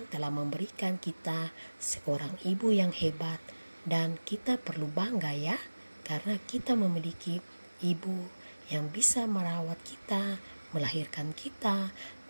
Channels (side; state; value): both; inverted; correlation -1.00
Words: telah memberikan kita seorang ibu yang hebat dan kita perlu bangga ya karena kita memiliki ibu yang bisa merawat kita, melahirkan kita,